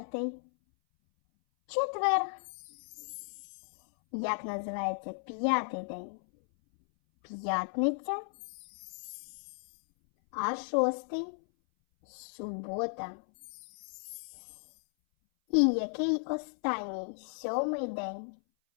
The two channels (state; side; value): silent; right; 55 dB below the other